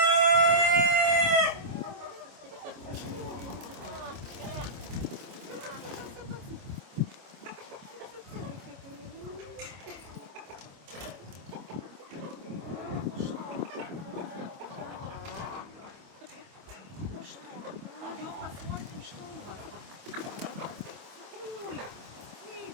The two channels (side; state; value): left; late; 26 ms